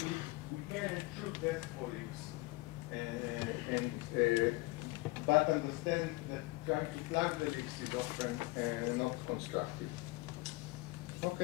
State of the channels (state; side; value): quieter; right; 21.9 dB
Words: we can and should test for leaks. But understand that trying to plug the leaks is often not constructive.